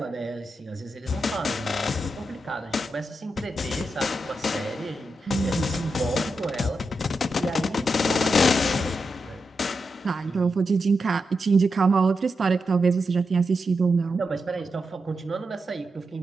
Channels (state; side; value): normal; both; correlation 0.87